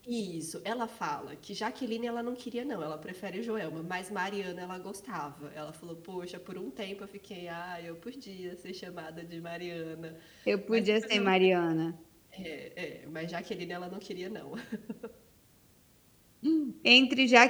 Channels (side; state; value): both; identical; correlation 1.00